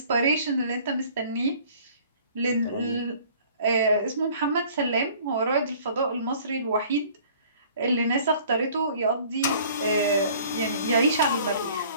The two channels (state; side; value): inverted; both; correlation -0.52